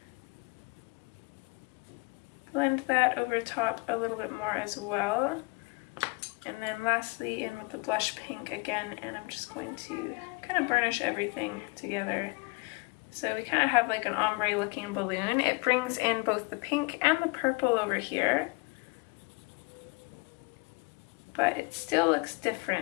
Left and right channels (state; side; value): quieter; right; 28.0 dB